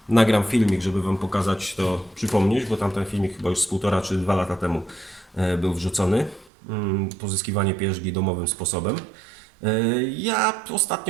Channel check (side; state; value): left; drops out; at 6.5 s